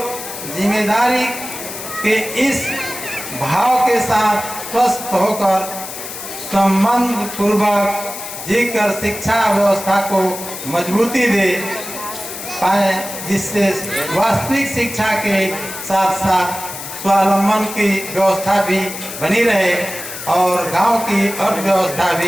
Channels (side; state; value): left; noise; hiss, 9 dB below the sound